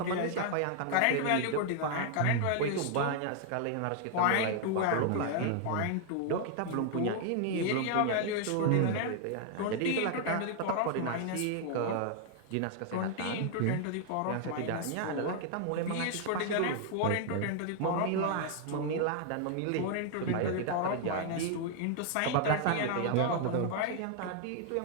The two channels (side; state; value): both; different; correlation 0.00